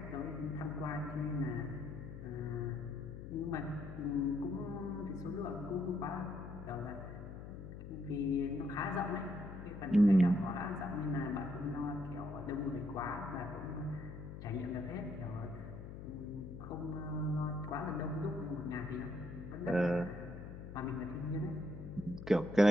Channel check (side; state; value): left; noise; hum, 10 dB below the sound